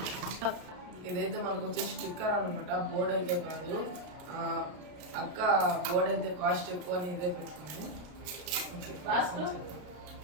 ఇదైతే మనకు వచ్చే స్టిక్కర్ అనమాట, బోర్డ్ అయితే కాదు. అక్క బోర్డ్ అయితే కాస్ట్ ఎక్కువ అని ఇదే పెట్టుకుంది.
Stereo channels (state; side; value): late; left; 33 ms